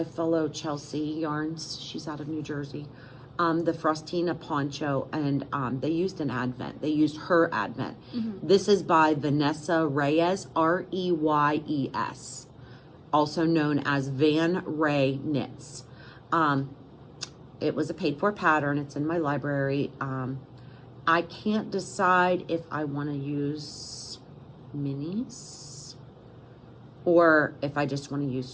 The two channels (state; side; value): identical; both; correlation 1.00